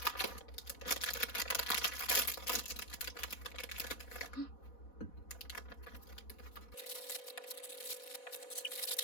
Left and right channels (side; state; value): right; late; 4.1 ms